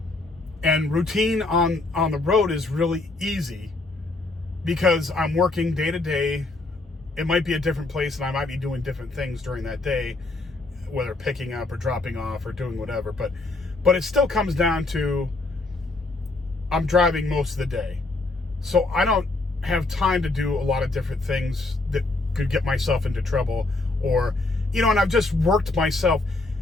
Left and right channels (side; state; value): right; quieter; 3.1 dB